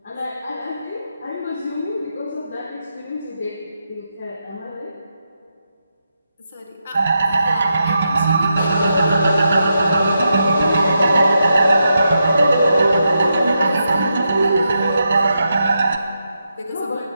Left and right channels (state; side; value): inverted; both; correlation -0.84